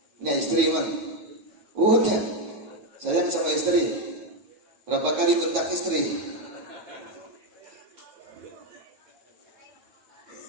punya istri, Bang. Udah, sayang sama istri. Berapa kali bentak istri?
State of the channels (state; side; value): late; left; 9.5 ms